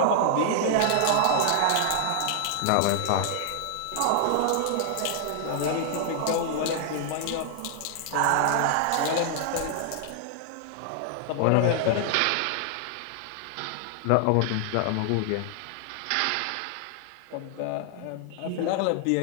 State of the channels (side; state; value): both; different; correlation 0.00